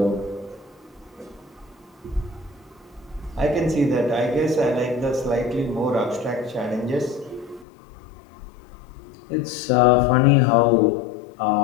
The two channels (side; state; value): right; drops out; at 7.7 s